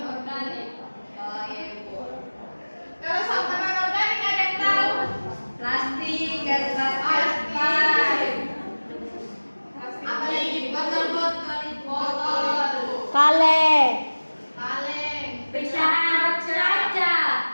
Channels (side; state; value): both; inverted; correlation -1.00